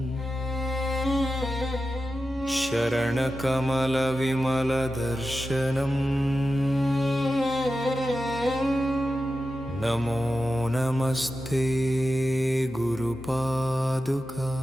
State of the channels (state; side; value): normal; both; correlation 0.91